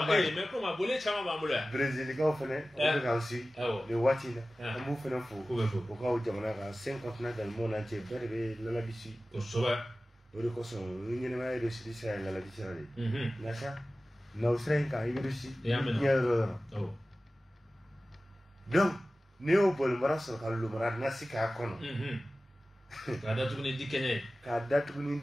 mais comment bolé chama ba mula. Brésil ka fene ka aussi. Le watina. Amu fene fo. Ko ka jamana ka 50 na dans le monde entier berbe la bisi. To soba. Ori ko so ni ne ma de sidi sa la bisi rale. Nasa. Na Australie ka iberusi. Donc Neo bol mara so ka lu mara nasika kono. Ka datu ni dikenya. Ka datu ni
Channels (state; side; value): normal; both; correlation 0.96